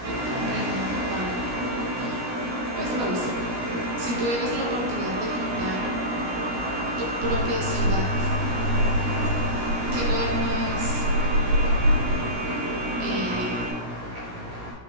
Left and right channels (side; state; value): left; late; 17 ms